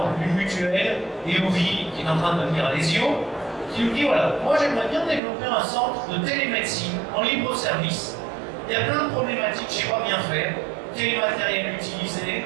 une mutuelle, EOVI, qui est en train de devenir Alesio, qui nous dit voilà, moi j'aimerais bien développer un centre de télémédecine en libre service. Il y a plein de problématiques, je ne sais pas bien faire. Quel matériel utiliser?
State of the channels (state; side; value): drops out; left; at 5.2 s